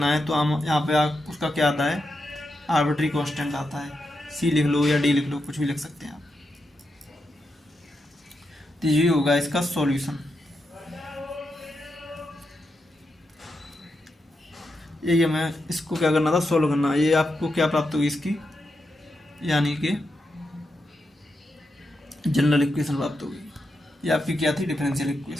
है तो हम यहाँ पे उसका क्या आता है, आर्बिट्री कांस्टेंट आता है। सी लिख लो या डी लिख लो, कुछ भी लिख सकते हैं आप। तो ये होगा इसका सॉल्यूशन। ये हमें इसको क्या करना था, सोल्व करना। ये आपको क्या प्राप्त होगी इसकी, यानी कि जनरल इक्वेशन प्राप्त होगी। ये आपकी क्या थी, डिफरेंशियल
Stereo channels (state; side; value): normal; both; correlation 0.85